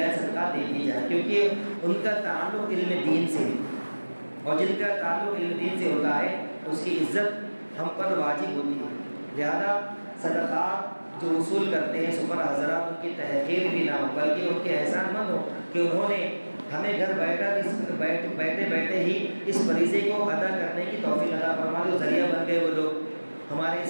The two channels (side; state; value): both; inverted; correlation -1.00